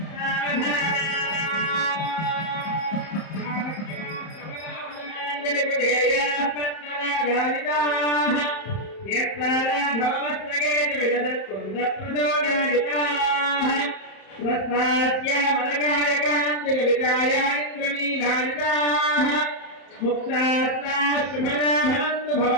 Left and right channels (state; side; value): late; right; 31 ms